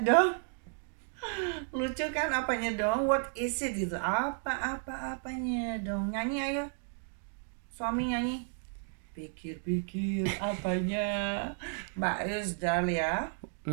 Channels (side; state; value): left; silent; 56 dB below the other